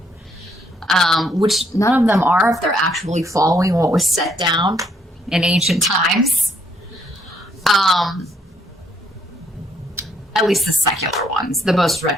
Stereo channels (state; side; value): normal; both; correlation 0.70